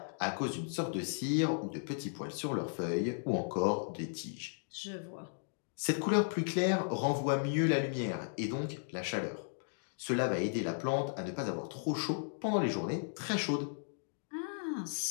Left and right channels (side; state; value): right; silent; digital silence